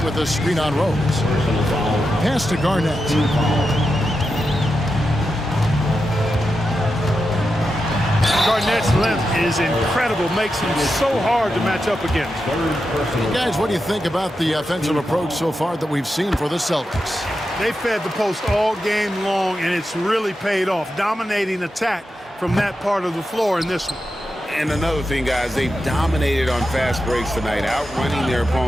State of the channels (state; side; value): normal; both; correlation 0.89